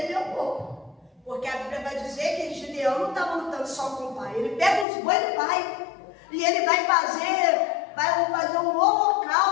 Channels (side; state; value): right; drops out; at 4.9 s